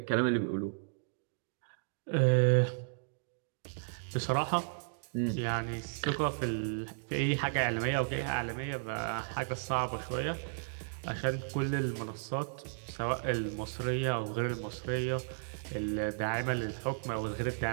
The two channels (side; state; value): left; silent; digital silence